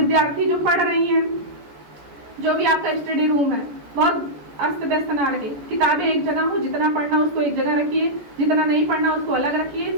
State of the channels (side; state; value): left; late; 14 ms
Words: जो पढ़ रही हैं, जो भी आपका स्टडी रूम है, बहुत अस्त व्यस्त ना रहे। किताबें एक जगह हो, जितना पढ़ना उसको एक जगह रखिए, जितना नहीं पढ़ना उसको अलग रखिए,